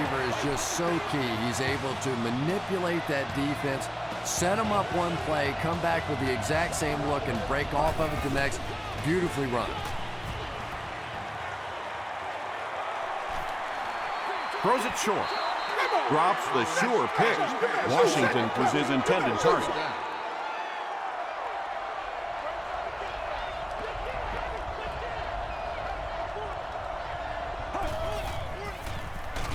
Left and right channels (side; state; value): both; identical; correlation 1.00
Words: is just so key. He's able to manipulate that defense, set them up one play, come back with the exact same look, and break off of it the next. Beautifully run. Throws it short. Drops the sure pick. Washington was his intended target.